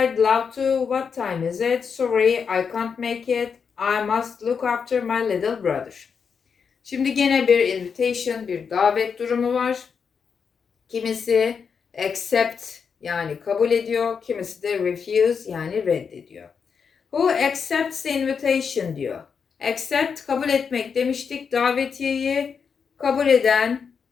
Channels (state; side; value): quieter; right; 6.2 dB